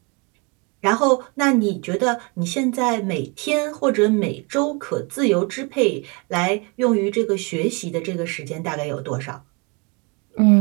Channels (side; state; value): left; quieter; 30.4 dB